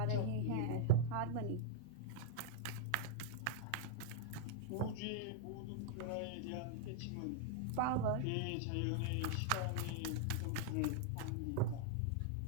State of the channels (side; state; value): both; different; correlation -0.01